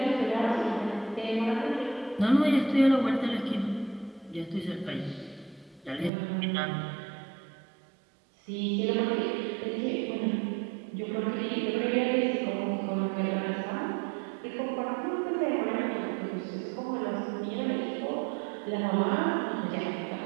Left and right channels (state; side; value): drops out; left; at 6.1 s